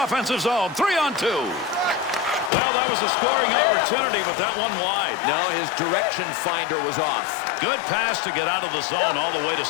offensive zone. 3-on-2. Well, that was a scoring opportunity, but that one wide. No, his direction finder was off. Good pass to get out of the zone all the way to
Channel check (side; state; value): right; drops out; at 2.5 s